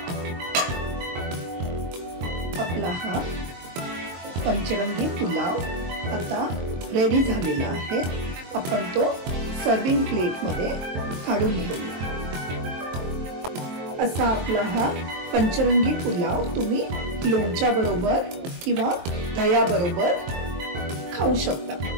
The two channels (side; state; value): left; late; 23 ms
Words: आपला हा पंचरंगी पुलाव आता रेडी झालेला आहे. आपण तो सर्विंग प्लेटमध्ये काढून घेऊया. असा आपला हा पंचरंगी पुलाव तुम्ही लोणच्या बरोबर किंवा दह्याबरोबर खाऊ शकता.